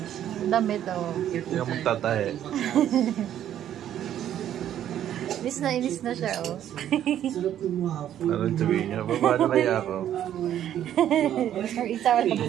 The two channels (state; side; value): quieter; left; 10.9 dB